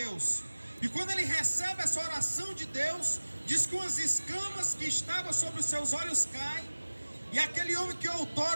E quando ele recebe essa oração de Deus, diz que umas escamas que estavam sobre os seus olhos caem, e aquele homem que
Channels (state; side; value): inverted; both; correlation -1.00